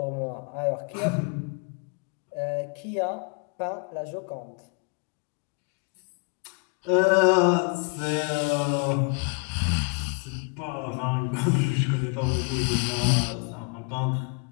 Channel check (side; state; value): right; quieter; 35.3 dB